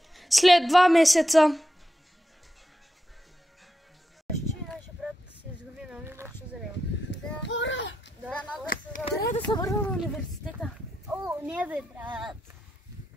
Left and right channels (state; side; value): normal; both; correlation 0.86